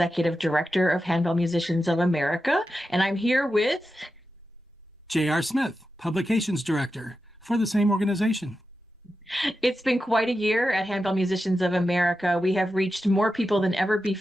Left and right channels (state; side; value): normal; both; correlation 0.91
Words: Director of Handbell Musicians of America, and I'm here with J.R. Smith, Publications Director for the same organization. It's been quite a year at Handbell Musicians of America. We have reached more people than ever